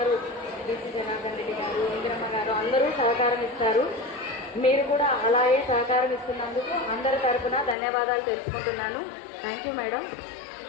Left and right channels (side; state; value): right; drops out; at 7.8 s